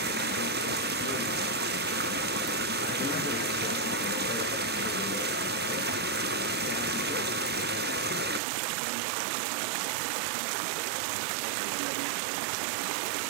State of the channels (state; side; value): drops out; left; at 8.4 s